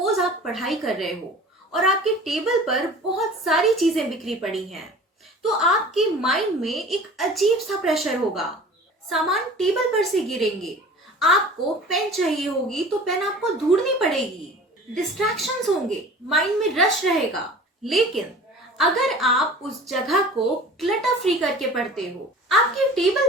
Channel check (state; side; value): normal; both; correlation 0.42